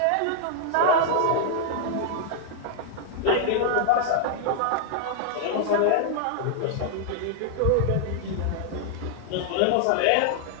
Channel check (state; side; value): different; both; correlation -0.01